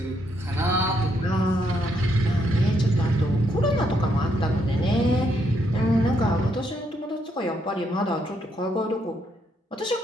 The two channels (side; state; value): both; normal; correlation 0.75